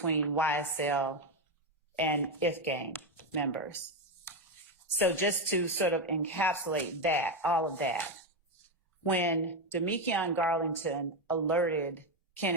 YSL and IF gang members. So just to sort of encapsulate that, all of that, when Demekion Garlington alerted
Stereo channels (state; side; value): normal; both; correlation 0.09